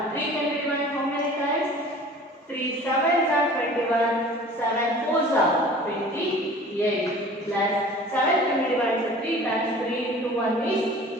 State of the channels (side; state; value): both; normal; correlation 0.44